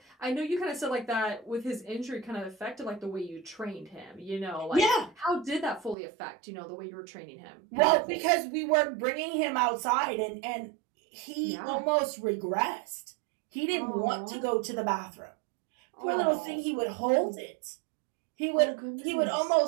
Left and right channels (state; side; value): drops out; left; at 6.0 s